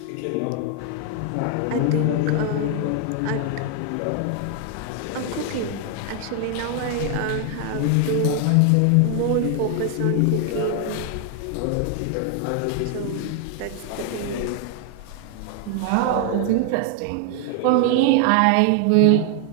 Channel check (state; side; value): different; both; correlation 0.00